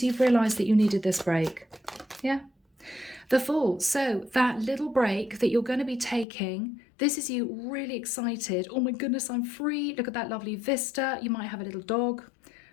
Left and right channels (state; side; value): drops out; right; at 6.2 s